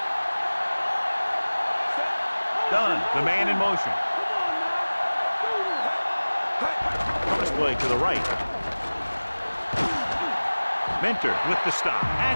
Done. The man in motion. Cross play to the right. Mentor with the stop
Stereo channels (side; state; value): both; inverted; correlation -1.00